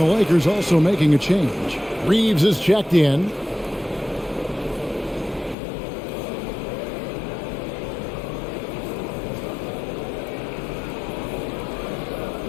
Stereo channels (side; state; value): right; drops out; at 5.6 s